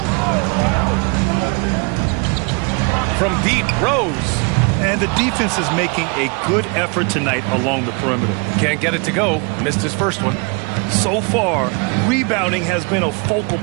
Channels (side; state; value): left; quieter; 32.6 dB